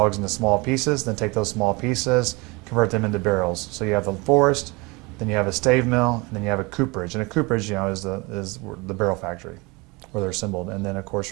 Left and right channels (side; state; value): left; quieter; 26.0 dB